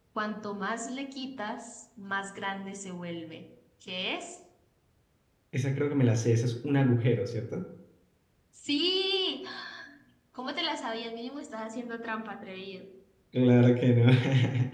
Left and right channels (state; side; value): identical; both; correlation 1.00